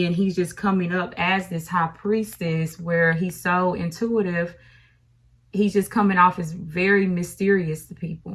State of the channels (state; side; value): identical; both; correlation 1.00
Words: he's just coming up as this high priestess where he's so intuitive. He's just coming off as very mysterious to